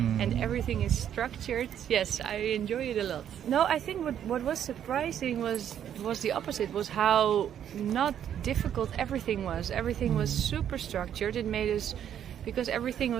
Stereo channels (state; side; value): quieter; left; 9.7 dB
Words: everything is structured. Yes, I enjoy it a lot. No, I think what was surprising was the opposite. Was how not difficult everything was. Everything was super structured. It made us, because everything